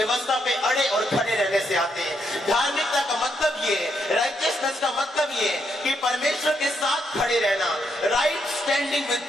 पे अड़े और खड़े रहने से आते हैं। धार्मिकता का मतलब ये, राइटियसनेस का मतलब ये कि परमेश्वर के साथ खड़े रहना, राइट स्टैंडिंग विद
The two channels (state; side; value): normal; both; correlation 0.78